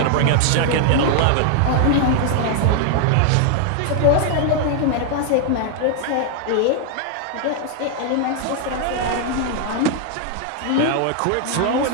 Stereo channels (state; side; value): different; both; correlation 0.00